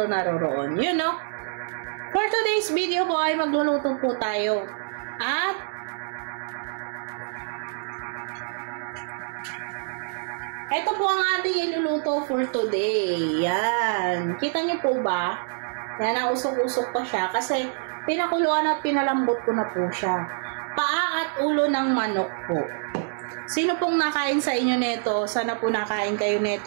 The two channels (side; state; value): left; silent; digital silence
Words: naroroon. You know? For today's video po ay magluluto po tayo. At ito po ang ating iluluto for today. Yan. Kita nyo po ba? Yan, nausok-usok pa siya kasi pinakuluan at pinalambot ko na po siya. Paa at ulo ng manok po. Sino pong nakain sa inyo nito? Sana po nakain kayo